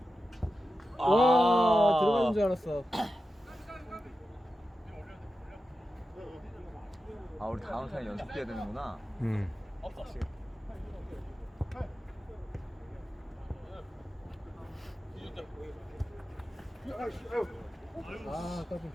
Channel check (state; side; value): normal; both; correlation 0.92